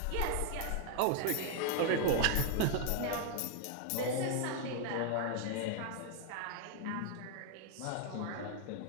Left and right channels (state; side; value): different; both; correlation 0.00